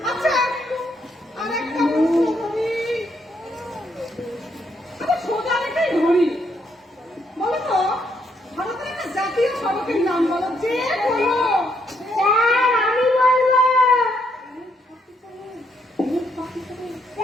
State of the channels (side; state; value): both; normal; correlation 0.74